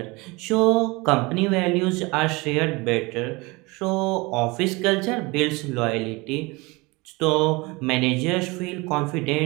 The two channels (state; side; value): quieter; left; 24.8 dB